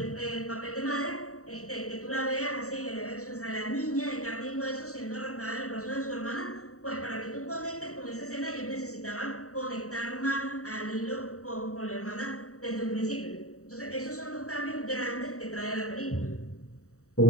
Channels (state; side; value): late; right; 0.65 ms